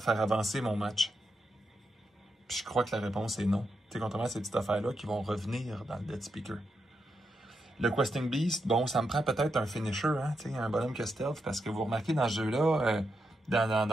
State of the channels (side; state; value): both; normal; correlation 0.84